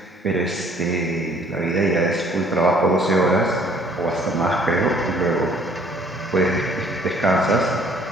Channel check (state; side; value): normal; both; correlation 0.58